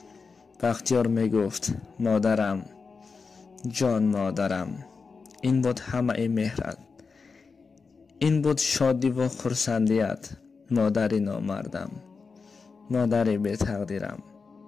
بختیار می گفت مادرم جان، مادرم. این بود همه مهرت، این بود شادی و خرسندیت. مادر نامردم، مادر بی تقدیرم،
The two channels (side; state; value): right; quieter; 4.8 dB